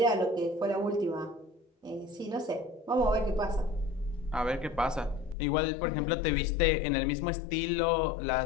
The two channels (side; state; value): right; drops out; at 5.4 s